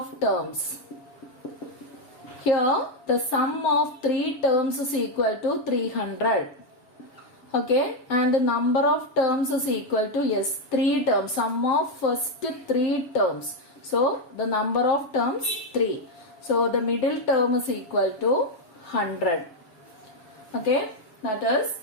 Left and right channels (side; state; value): right; late; 7.2 ms